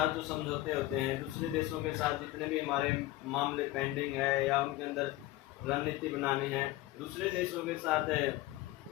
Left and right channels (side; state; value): right; quieter; 16.9 dB